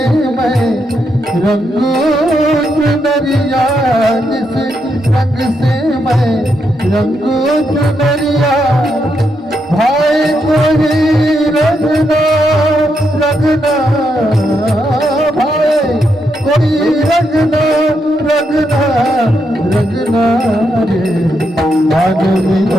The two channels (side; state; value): both; normal; correlation 0.81